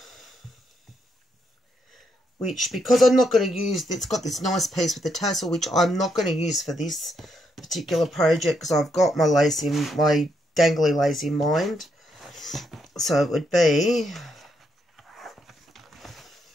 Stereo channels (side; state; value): both; normal; correlation 0.78